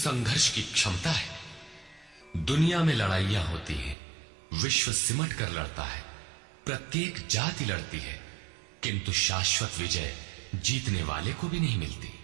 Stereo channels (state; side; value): drops out; left; at 4.0 s